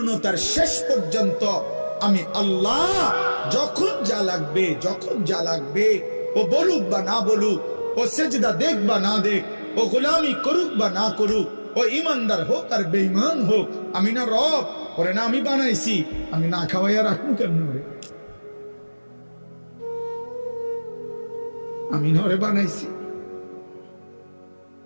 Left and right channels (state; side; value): inverted; both; correlation -1.00